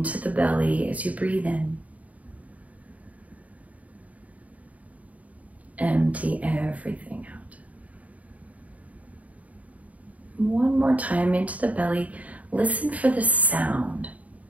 the belly as you breathe in. Empty everything out. One more time into the belly. Listen for the sound.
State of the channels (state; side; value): late; left; 0.070 ms